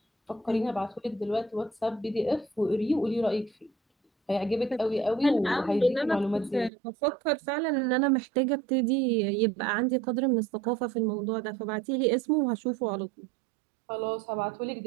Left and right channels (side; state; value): left; drops out; at 6.7 s